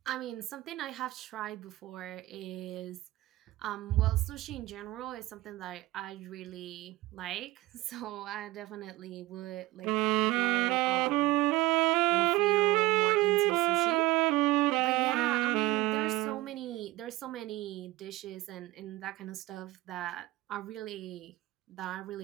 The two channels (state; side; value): quieter; left; 19.2 dB